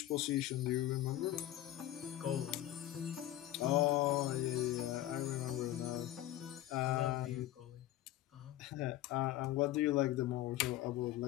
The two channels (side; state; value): right; quieter; 14.2 dB